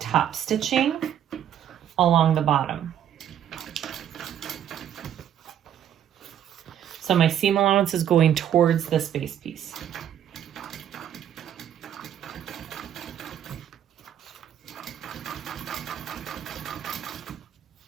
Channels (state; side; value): quieter; left; 10.1 dB